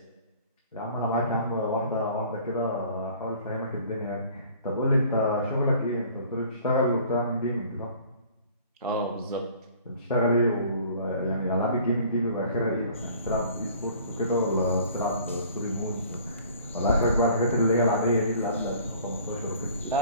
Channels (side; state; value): both; inverted; correlation -0.51